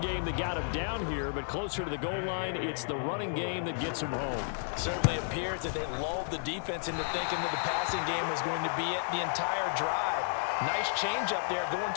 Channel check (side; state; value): right; silent; digital silence